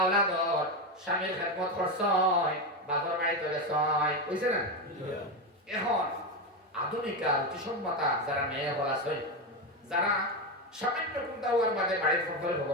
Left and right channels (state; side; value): normal; both; correlation 0.12